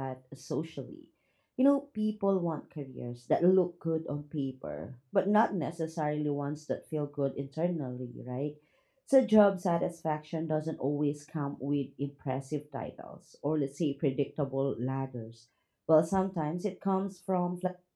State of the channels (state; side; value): identical; both; correlation 1.00